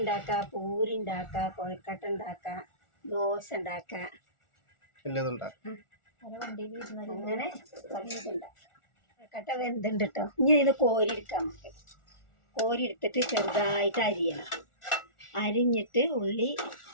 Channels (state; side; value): late; right; 1.4 ms